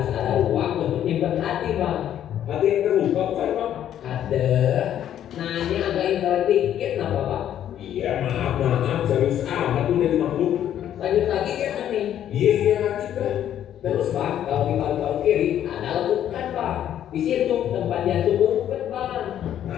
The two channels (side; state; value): right; quieter; 10.7 dB